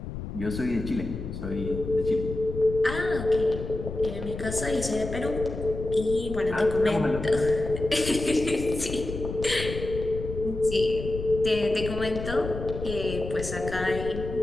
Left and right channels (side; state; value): left; noise; rumble, 7 dB below the sound